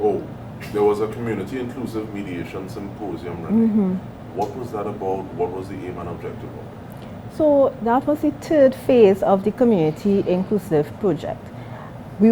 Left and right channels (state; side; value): identical; both; correlation 1.00